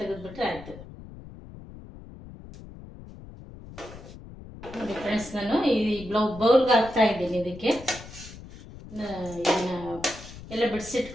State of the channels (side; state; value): left; noise; rumble, 16 dB below the sound